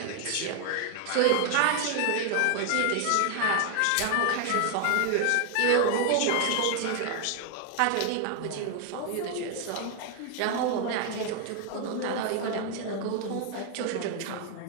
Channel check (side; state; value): both; different; correlation 0.00